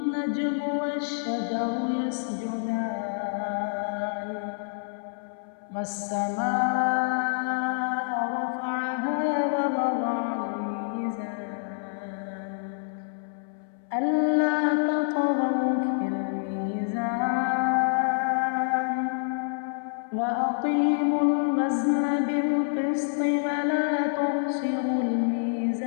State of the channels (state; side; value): silent; right; 59 dB below the other